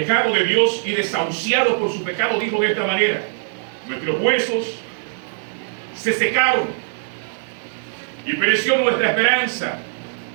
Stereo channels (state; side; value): silent; left; digital silence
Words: de Dios y desahuciado por su pecado dijo de esta manera: nuestros huesos se secaron y pereció nuestra esperanza